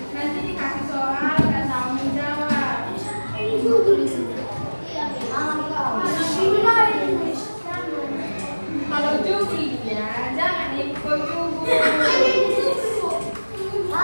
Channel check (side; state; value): both; inverted; correlation -1.00